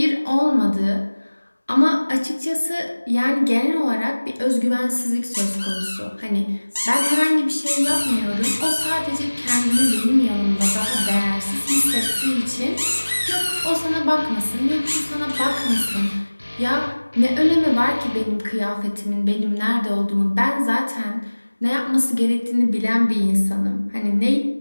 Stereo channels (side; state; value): both; inverted; correlation -1.00